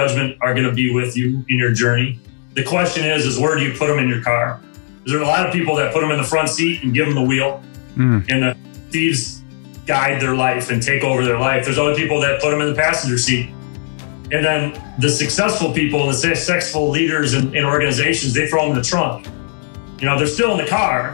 are going to be with you in your journey. The question is where do you put them in your car? There are a lot of people that put them in the front seat and give them the wheel, and the thieves guide their life and take over their life. There's other people that put them in the passenger seat. And then the successful people, the successful leaders in organizations, they throw them in the trunk. You know, they're still in the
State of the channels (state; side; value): silent; right; digital silence